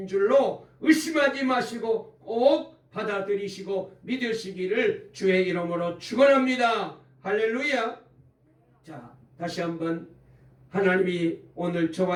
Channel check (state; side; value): identical; both; correlation 1.00